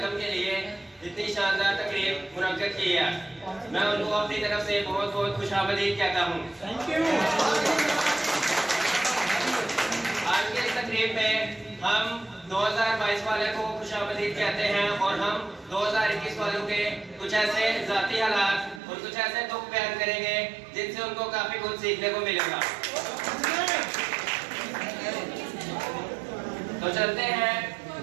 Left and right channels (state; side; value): drops out; left; at 18.8 s